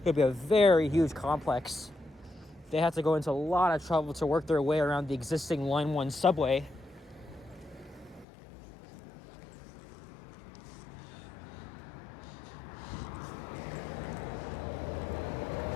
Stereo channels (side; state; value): right; drops out; at 8.2 s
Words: could be a very huge complex. They have to go into a lot of trouble to work their way around the existing Line 1 subway.